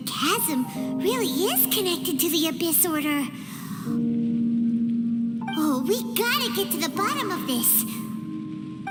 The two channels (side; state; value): both; identical; correlation 1.00